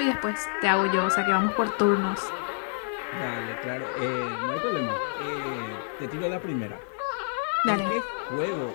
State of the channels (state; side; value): silent; right; digital silence